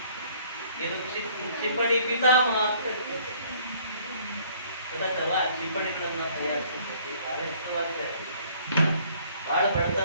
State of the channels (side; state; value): both; inverted; correlation -0.59